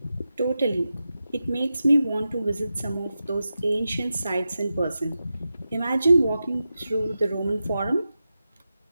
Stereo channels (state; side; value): inverted; both; correlation -0.91